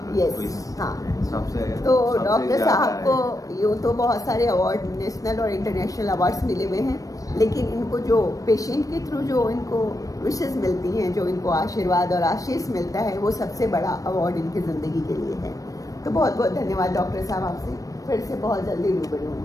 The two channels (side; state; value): right; late; 0.16 ms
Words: यस, हाँ। सबसे तो डॉक्टर साहब को यूँ तो बहुत सारे अवार्ड, नेशनल और इंटरनेशनल अवार्ड्स मिले हुए हैं, लेकिन इनको जो पेशेंट के थ्रू जो इनको विशेष मिलती हैं, जो इनको आशीर्वाद और आशीष मिलता है, वो सबसे बड़ा अवार्ड इनकी ज़िंदगी के लिए है। तो बहुत बहुत धन्यवाद डॉक्टर साहब, आपसे फिर से बहुत जल्दी रूबरू